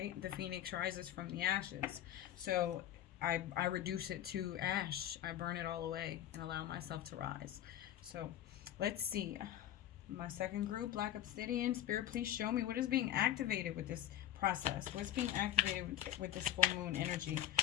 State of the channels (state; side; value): quieter; right; 11.9 dB